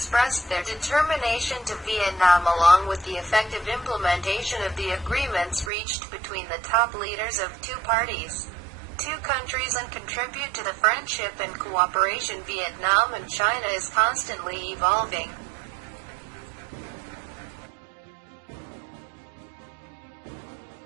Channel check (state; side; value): drops out; left; at 5.7 s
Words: their determination to Vietnam along with the effective implementation of the agreements reached between the top leaders of two parties, two countries, and contribute to the friendship and cooperation. Vietnam and China is constantly evolving.